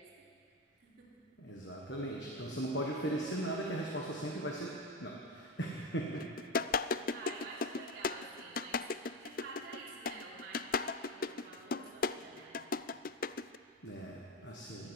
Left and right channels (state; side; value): normal; both; correlation 0.16